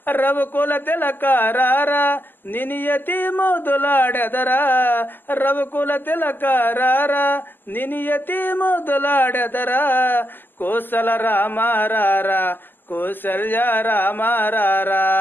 రవుకుల తిలకారారా నిని యతి ముదులాడెదరా రవుకుల తిలకారారా నిని యతి ముదులాడెదరా కోసల రామారారా కౌసల్య రామారారా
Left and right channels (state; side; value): late; right; 0.092 ms